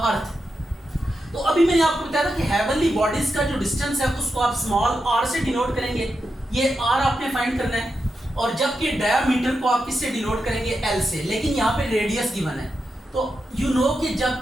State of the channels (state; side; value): normal; both; correlation 0.87